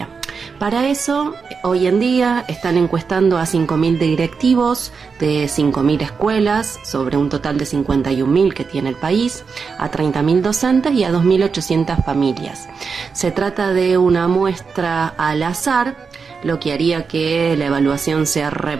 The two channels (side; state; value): left; quieter; 5.3 dB